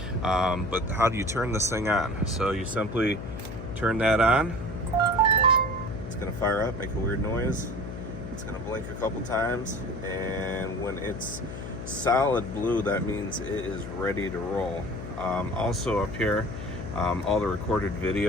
But how do you turn this thing on? So you simply turn that on. It's going to fire up, make a weird noise. It's going to blink a couple times, and when it's solid blue, that means it is ready to roll. Also up here, all the recorded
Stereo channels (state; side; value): noise; left; hum, 9 dB below the sound